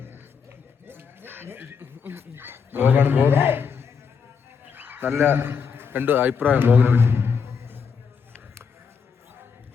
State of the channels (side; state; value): right; quieter; 6.1 dB